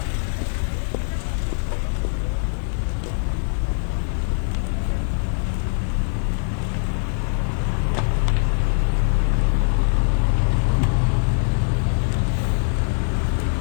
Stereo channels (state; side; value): silent; right; digital silence